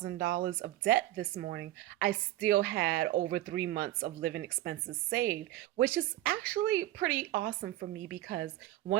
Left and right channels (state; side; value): quieter; left; 15.3 dB